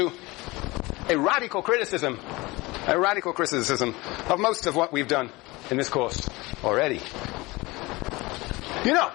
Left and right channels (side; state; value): right; quieter; 22.4 dB